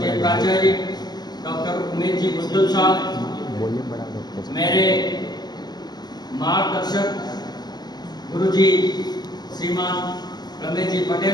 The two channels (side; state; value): right; late; 0.20 ms